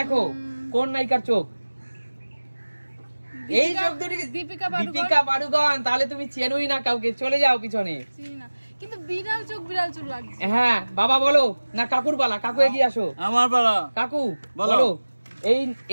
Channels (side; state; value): both; inverted; correlation -1.00